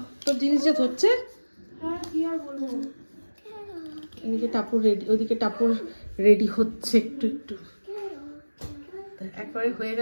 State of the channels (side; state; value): both; inverted; correlation -1.00